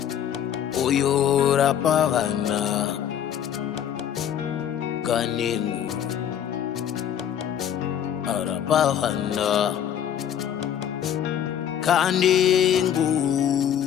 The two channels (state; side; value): quieter; right; 9.5 dB